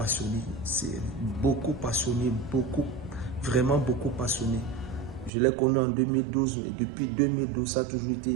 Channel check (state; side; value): drops out; left; at 5.3 s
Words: vraiment beaucoup passionnée. Je l'ai connue en 2012 et depuis 2012, ça a toujours